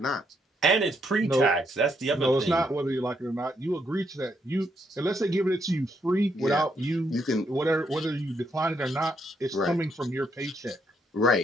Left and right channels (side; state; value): both; normal; correlation 0.75